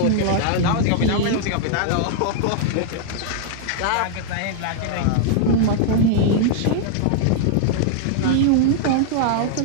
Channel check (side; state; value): both; different; correlation -0.01